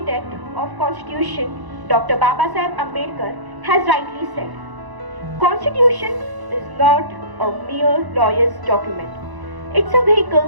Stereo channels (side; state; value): left; late; 1.0 ms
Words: of Constitution, Dr. Babasaheb Ambedkar, has rightly said, Constitution is not a mere lawyer's document. It's a